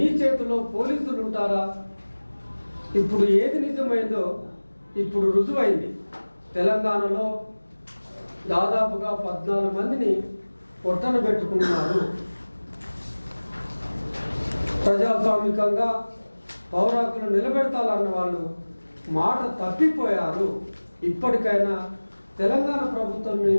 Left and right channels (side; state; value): both; inverted; correlation -1.00